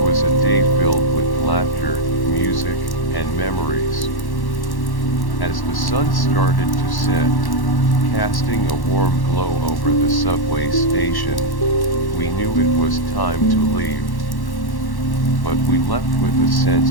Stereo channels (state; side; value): late; right; 1.1 ms